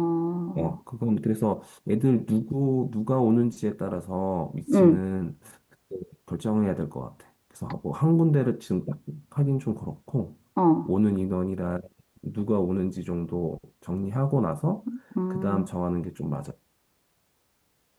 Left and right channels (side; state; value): both; identical; correlation 1.00